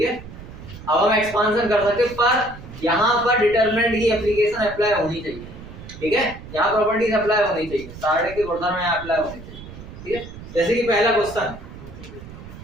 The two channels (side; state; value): right; noise; rumble, 15 dB below the sound